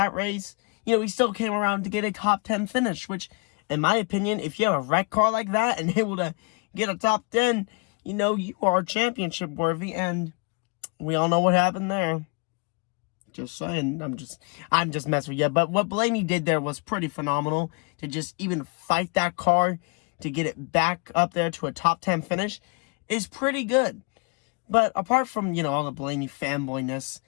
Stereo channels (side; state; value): right; quieter; 33.0 dB